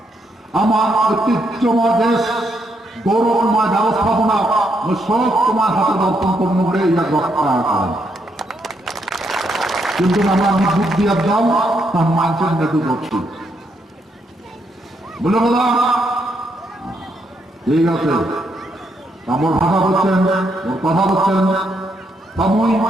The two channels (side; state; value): both; normal; correlation 0.77